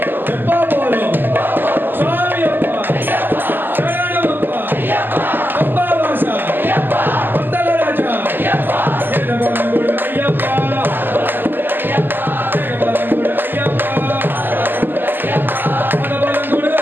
எப்போ போறோம் சுவாமி அப்பா சரணம் அப்பா அப்பா வாசா பந்தல ராஜா ஏதபலங்குடு ஐயப்பா ஏதபலங்குடு ஐயப்பா பதபலங்குடு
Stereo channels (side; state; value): left; late; 0.092 ms